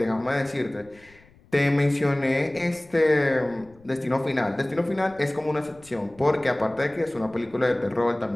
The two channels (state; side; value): noise; left; rumble, 27 dB below the sound